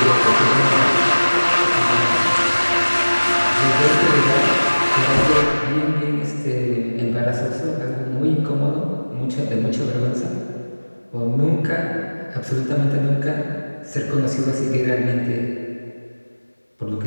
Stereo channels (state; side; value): inverted; both; correlation -1.00